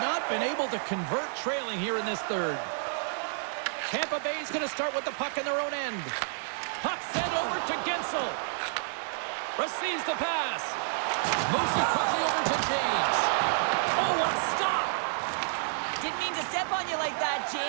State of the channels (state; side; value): silent; left; digital silence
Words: been able to convert trailing here in this third. Tampa Bay's going to start with the puck in their own end. Puck sent over to Gensel. Receives the pass. Moves it quickly over to James. Oh, what a stop! Didn't mean to step on you like that,